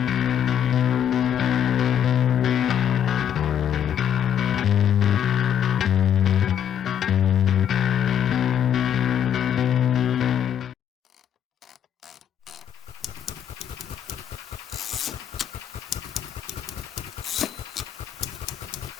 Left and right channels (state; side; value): quieter; right; 9.4 dB